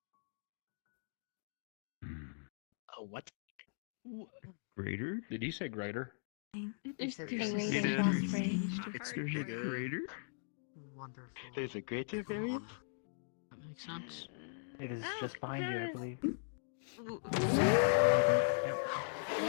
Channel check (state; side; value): silent; right; digital silence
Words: What? Greater? Did he say greater? There's The there's rate It of is. frost rage. It's There's a bigger. greater? Wonderful. There's a greater variant? That makes sense. It is just behind you, I believe.